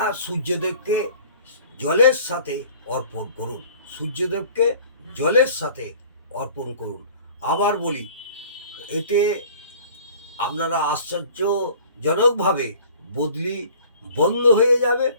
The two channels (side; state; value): both; inverted; correlation -0.49